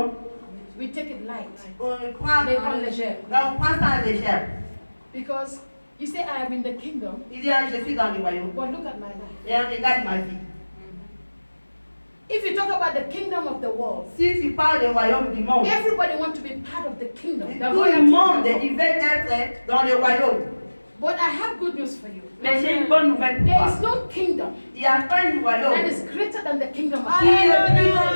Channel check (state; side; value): inverted; both; correlation -1.00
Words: We take it light. prend, Mais en légère. on prend ça en légère. Because you say, I am in the kingdom, Il dit, ah, je suis dans le royaume. but look at my life. Et regarde ma vie. If you talk about the kingdom of the world, Si tu parles du royaume du monde, everybody wants to be part of the kingdom. The tout royal le monde, kingdom. il veut être dans le royaume. But I have good news for you. Mais j'ai une bonne nouvelle pour There toi. is no kingdom Il n'y a pas un that royaume is greater than the kingdom of qui God. est plus grand